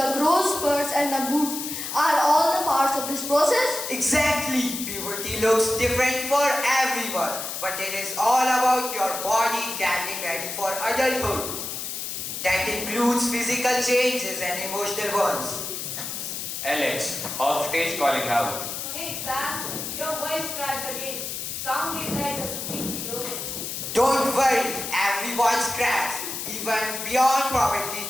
growth spurts and the moods are all the parts of this process? Exactly. Puberty looks different for everyone, but it is all about your body getting ready for adulthood. That includes physical changes and emotional ones. Alex, off stage, calling out. Hey Sam, your voice cracked again. Sounded like a squeaky door. Don't worry, everyone's cracks. Even beyond probably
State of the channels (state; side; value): noise; left; hiss, 5 dB below the sound